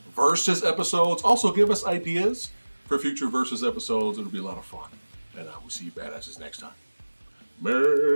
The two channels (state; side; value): inverted; both; correlation -1.00